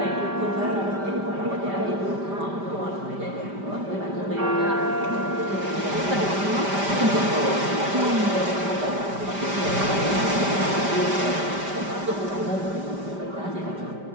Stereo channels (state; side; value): late; left; 5.1 ms